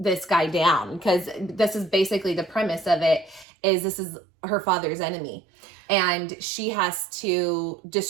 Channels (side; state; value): left; drops out; at 3.5 s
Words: guy down because this is basically the premise of it is this is her father's enemy and she has to